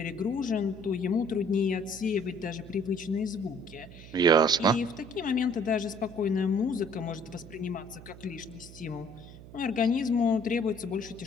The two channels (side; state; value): right; noise; hum, 17 dB below the sound